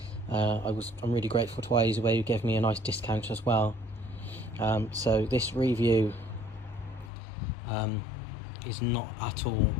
I'm really grateful to iEZway, who gave me a nice discount as well. So this review is not at all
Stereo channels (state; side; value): drops out; right; at 7.1 s